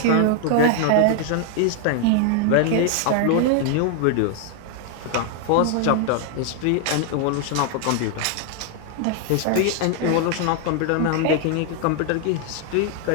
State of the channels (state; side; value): different; both; correlation 0.00